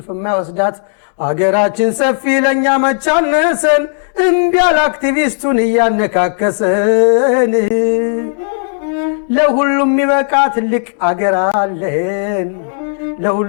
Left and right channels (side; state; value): right; silent; digital silence